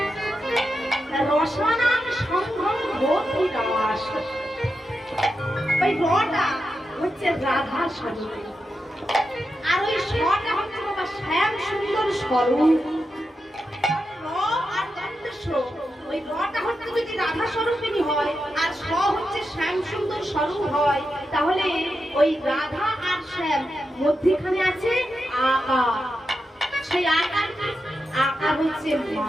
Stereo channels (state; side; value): normal; both; correlation 0.88